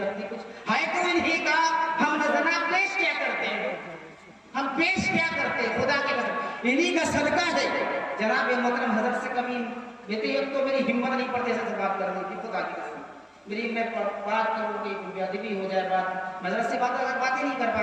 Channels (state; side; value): identical; both; correlation 1.00